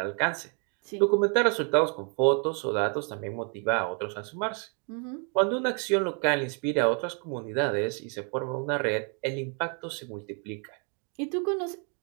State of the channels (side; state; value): left; quieter; 39.2 dB